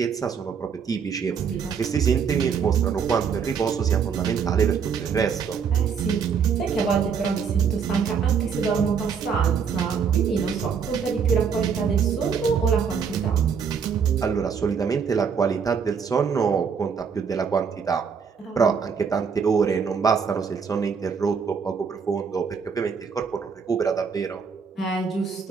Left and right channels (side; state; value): left; quieter; 6.4 dB